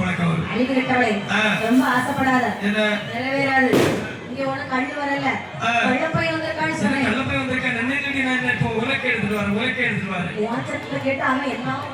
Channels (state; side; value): identical; both; correlation 1.00